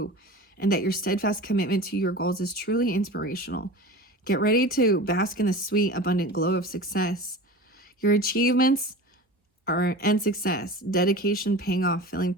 and that your steadfast commitment to your goals is truly inspirational. Get ready to bask in the sweet, abundant glow of success. Your achievements and success, dedication paying off, feeling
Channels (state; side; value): normal; both; correlation 0.34